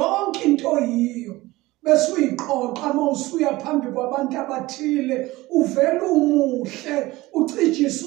into yiyo bese uyiqoqa uma usuya phambi kwabantu abathile uvela umuhle ucijisa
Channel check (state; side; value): quieter; left; 19.3 dB